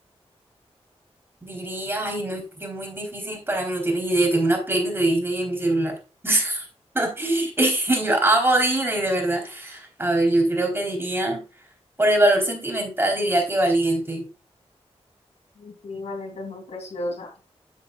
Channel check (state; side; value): normal; both; correlation 0.70